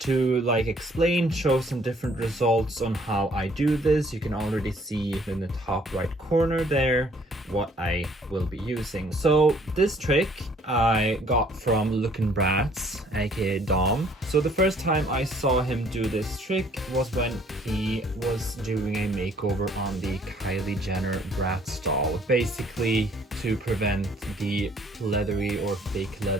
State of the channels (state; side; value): normal; both; correlation 0.60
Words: like explain, show some different results on how I do this. You can already see in the top right corner there what I will be using. So this trick I got from Lookin' Bratz, aka Dom. So the first time I saw him do this trick was when he was doing a makeover on the Kylie Jenner Bratz doll, basically to prevent the leathery or fake